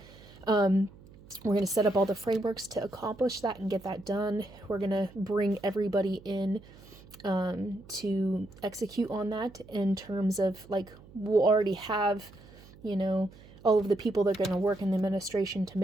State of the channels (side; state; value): right; noise; hum, 22 dB below the sound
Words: We're going to set up all the frameworks to accomplish that and get that done. We're going to bring everybody in to execute on that in terms of like, we'll already have, all of the people that are going to work in the administration to